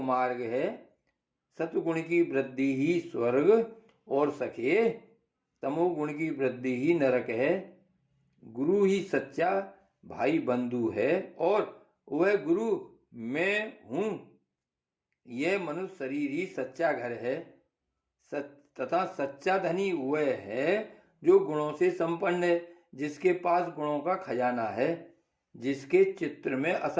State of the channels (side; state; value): both; identical; correlation 1.00